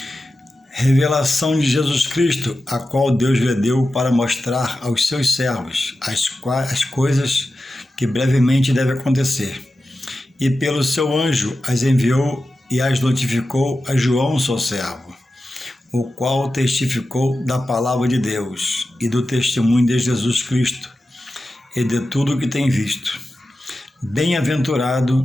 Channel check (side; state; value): both; normal; correlation 0.92